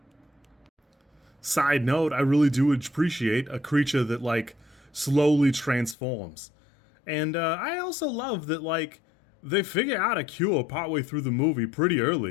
Side note, I really do appreciate a creature that, like, slowly transforms. And I also love that, like, they figure out a cure partway through the movie pretty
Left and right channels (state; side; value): drops out; right; at 6.0 s